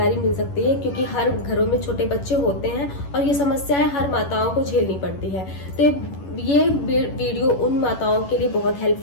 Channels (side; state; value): right; late; 11 ms